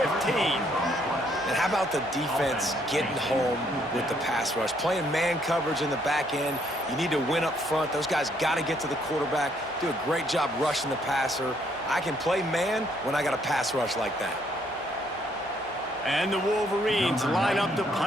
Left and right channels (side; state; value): both; normal; correlation 0.69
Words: And how about the defense getting home with the pass rush? Playing man coverage in the back end. You need to win up front. Those guys got to get to the quarterback, do a great job rushing the passer. I can play man when I got a pass rush like that. And the Wolverines line up to